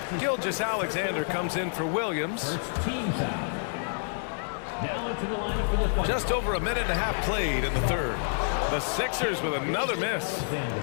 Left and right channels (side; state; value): right; silent; digital silence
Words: Gilgeous-Alexander comes in for Williams. Just over a minute and a half played in the third. The Sixers with another miss.